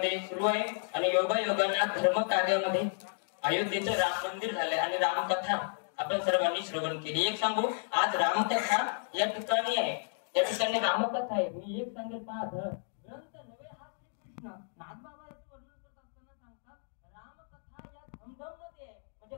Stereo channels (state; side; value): silent; right; digital silence